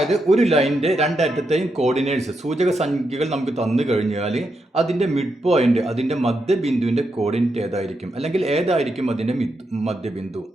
ഒരു ലൈനിന്റെ രണ്ടറ്റത്തെയും കോർഡിനേറ്റ്സ് സൂചക സംഖ്യകൾ നമുക്ക് തന്നു കഴിഞ്ഞാൽ അതിന്റെ മിഡ് പോയിന്റ്, അതിന്റെ മധ്യബിന്ദുവിന്റെ കോർഡിനേറ്റ് ഏതായിരിക്കും, അല്ലെങ്കിൽ ഏതായിരിക്കും അതിന്റെ മധ്യബിന്ദു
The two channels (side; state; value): both; normal; correlation 0.83